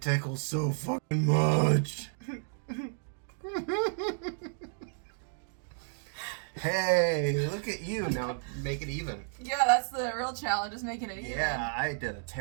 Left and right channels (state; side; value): silent; left; digital silence